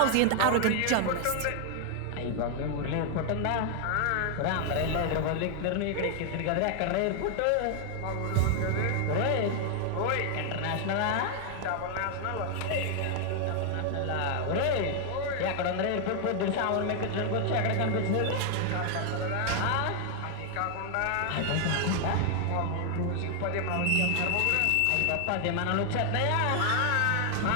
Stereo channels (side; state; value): both; different; correlation 0.00